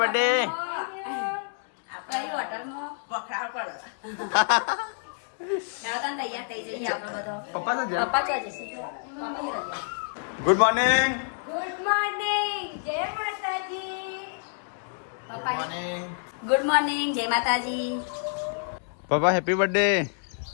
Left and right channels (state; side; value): silent; right; digital silence